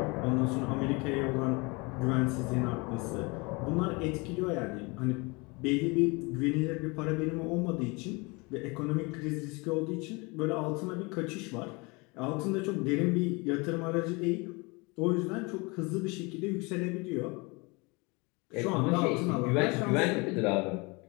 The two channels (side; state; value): right; quieter; 27.4 dB